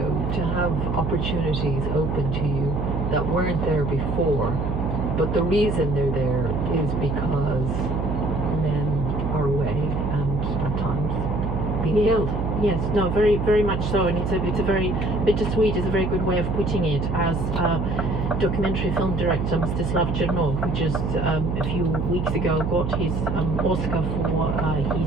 to have opportunities open to you that weren't there before, but the reason they're there is because men are away and at times being killed. Yes, no, very, very much so, and it's a very bittersweet is a very good way of putting it. As documentary film director Mstislav Chernov, who just a few weeks ago got his Oscar for his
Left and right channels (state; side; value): noise; right; hum, 1 dB below the sound